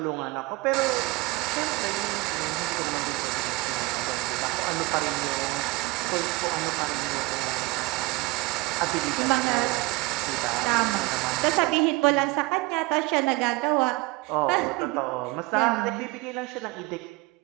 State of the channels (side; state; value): left; quieter; 22.6 dB